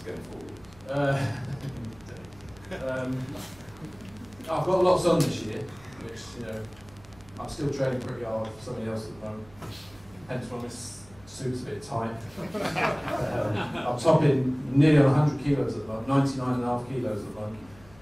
going forward? I've got lots on this year, which, you know, I'm still training pretty hard for somebody else at the moment. Hence why this suit's a bit tight. I'm topping nearly on 100 kilos at the moment, 99.5 kilos at the moment.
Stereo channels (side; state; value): right; noise; hum, 24 dB below the sound